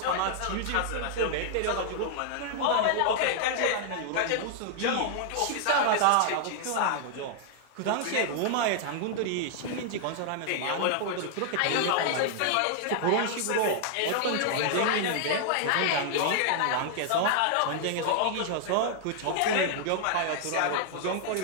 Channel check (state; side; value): different; both; correlation 0.00